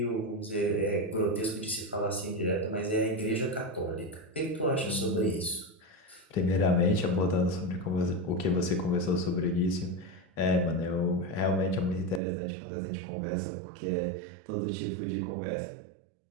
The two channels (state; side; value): drops out; left; at 12.2 s